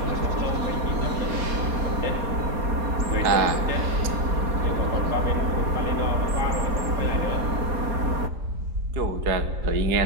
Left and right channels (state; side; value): late; left; 4.2 ms